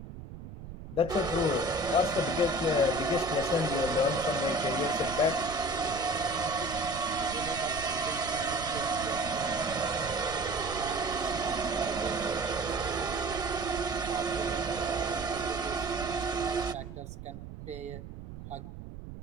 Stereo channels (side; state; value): right; noise; rumble, 12 dB below the sound